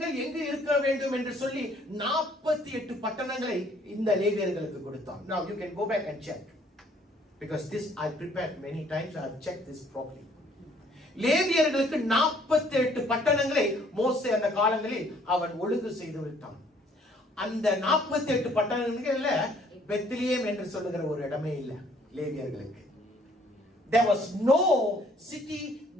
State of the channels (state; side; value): normal; both; correlation 0.61